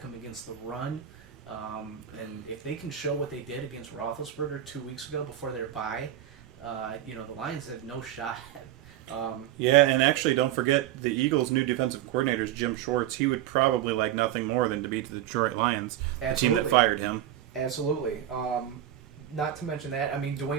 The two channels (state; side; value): quieter; left; 11.6 dB